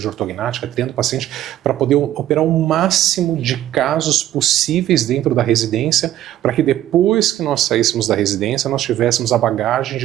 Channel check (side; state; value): left; quieter; 12.8 dB